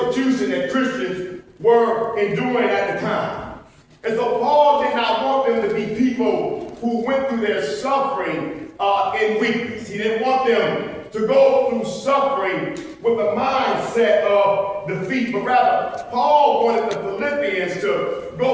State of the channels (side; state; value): both; identical; correlation 1.00